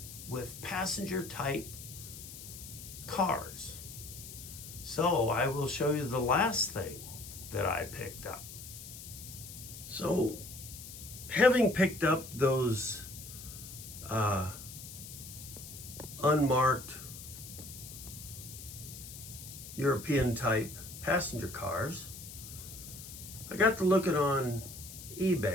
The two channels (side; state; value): left; noise; hiss, 12 dB below the sound